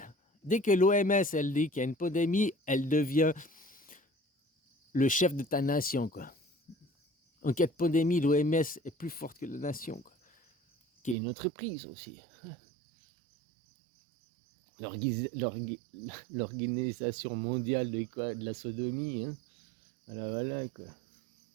Dès que l'OMS, elle dit qu'il y a une pandémie, elle devient le chef de ta nation, quoi. En cas de pandémie, l'OMS est plus forte que la nation, quoi. Qui est une entreprise aussi. L'organisation mondiale de la sodomie, hein. Voilà, quoi.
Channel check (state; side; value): drops out; left; at 11.2 s